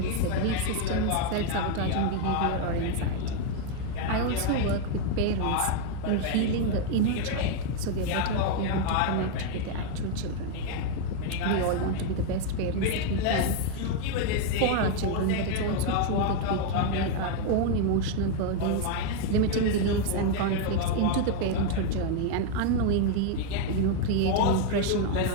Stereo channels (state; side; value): different; both; correlation 0.00